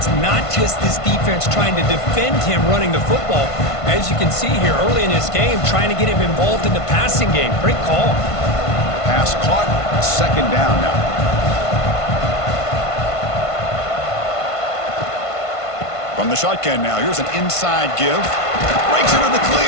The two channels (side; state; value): right; late; 1.5 ms